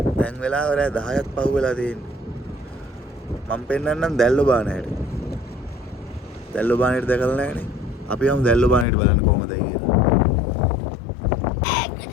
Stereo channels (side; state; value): right; drops out; at 8.8 s